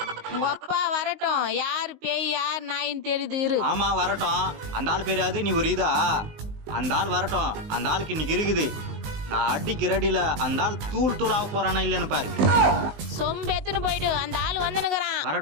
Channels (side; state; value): left; late; 20 ms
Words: உங்க அப்பா வரட்டும், யாரு பேய் யார் நாயின்னு தெரியுது இரு. ஆமா வரட்டும், அந்த ஆள் பேராது நீ ஒரு இதா? அந்த ஆள் வரட்டும், அந்த ஆளுக்கு இன்னைக்கு இருக்குது. நான் அடிக்கு ரெடியில அந்த ஆள் தூள் தூளாக போறானா இல்லைன்னு பாரு. சொம்பு எத்துன்னு போயிடு, அந்த ஆள் வந்துனுக்குறான்.